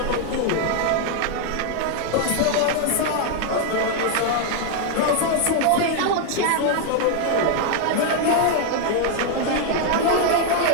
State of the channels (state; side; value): different; both; correlation 0.00